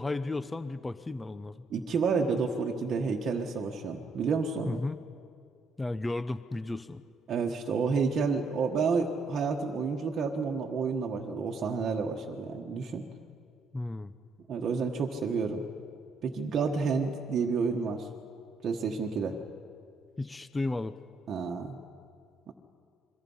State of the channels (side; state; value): left; quieter; 3.6 dB